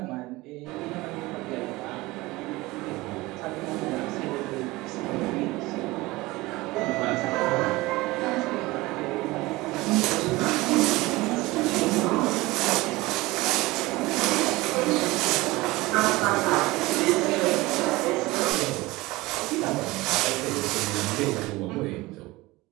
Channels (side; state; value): left; quieter; 20.6 dB